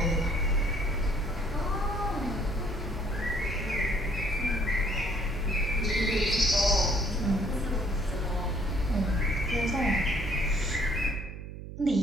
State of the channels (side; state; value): right; noise; hum, 10 dB below the sound